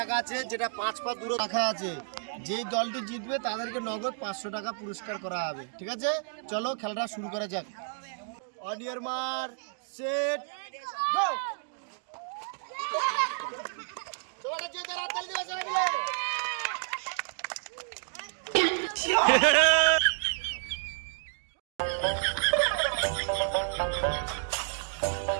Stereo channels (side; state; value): left; silent; digital silence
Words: আছে, যেটা 5 পা দূরে রাখা আছে। যেই দলটি জিতবে তাদেরকে নগদ 500 টাকা পুরস্কার করা হবে। ঠিক আছে, চলো খেলাটা শুরু করা যাক। অন ইয়ার মার সেট গো। চলো যে তারা তালি দিবে সবাই মিলে।